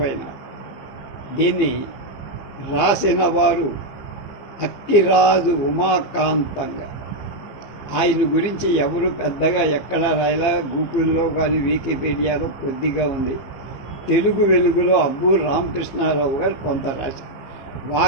దీన్ని రాసిన వారు అక్కిరాజు ఉమాకాంతంగా. ఆయన గురించి ఎవరు పెద్దగా ఎక్కడ రాయలా, గూగుల్లో కానీ వికీపీడియాలో కొద్దిగా ఉంది. తెలుగు వెలుగులో అబ్బు రామకృష్ణారావు గారు కొంత రాశారు.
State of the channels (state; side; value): late; right; 15 ms